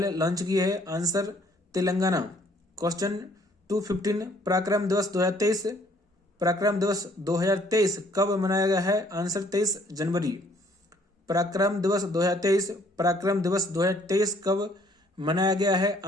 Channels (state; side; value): normal; both; correlation 0.62